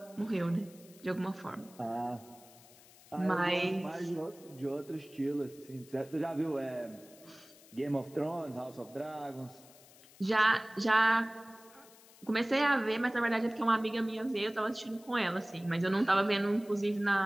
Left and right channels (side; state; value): left; noise; hiss, 24 dB below the sound